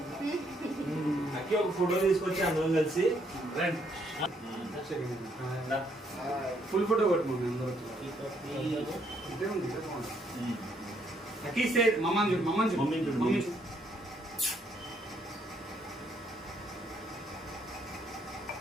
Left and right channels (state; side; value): normal; both; correlation 0.71